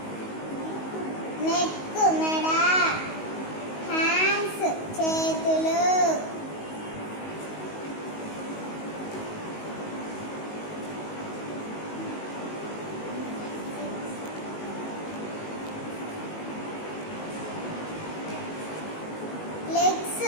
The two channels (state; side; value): late; right; 19 ms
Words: నెక్ మెడ. హ్యాండ్స్ చేతులు. లెగ్స్